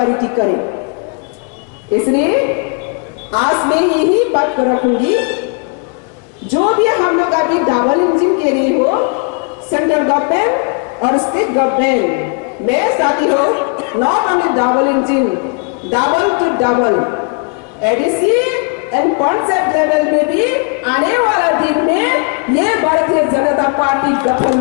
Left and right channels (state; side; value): quieter; right; 36.3 dB